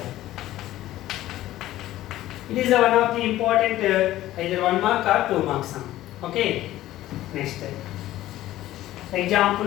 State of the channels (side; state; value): right; quieter; 14.8 dB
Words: It is one of the important either 1 mark or 2 mark sum. Okay. Next.